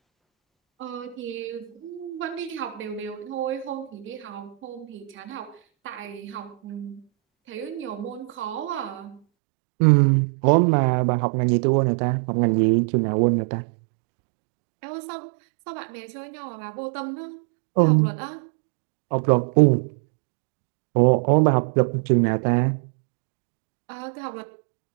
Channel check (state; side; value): drops out; left; at 9.2 s